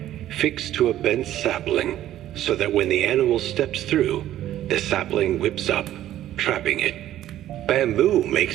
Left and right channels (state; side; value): quieter; left; 12.8 dB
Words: fixed to a bent sapling so that when the animal steps through, the sapling whips up, trapping it. Bamboo